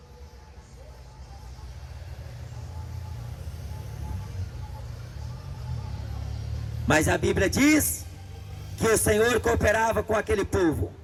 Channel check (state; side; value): identical; both; correlation 1.00